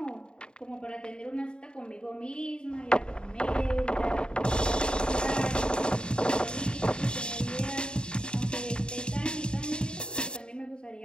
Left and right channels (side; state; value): right; late; 0.050 ms